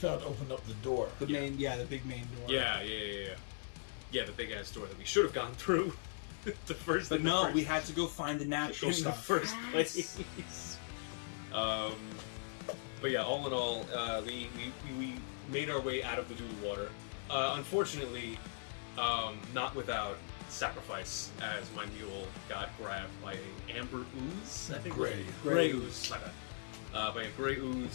opened up the door. The main, the big main door. Yeah, the big ass door that we should have gone through. But no, we had to go find the natural in the stuff. first place. But yeah, all in all, we made our way out of the doodle water. Unfortunately, not without sacrifice, as my mule got grabbed by an amber ooze. I think gray ooze. My bad. By a gray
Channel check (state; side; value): silent; right; digital silence